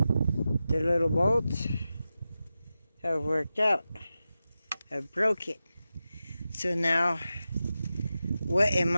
the little bolts have worked out. I've broke it. So now, what am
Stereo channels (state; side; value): inverted; both; correlation -0.92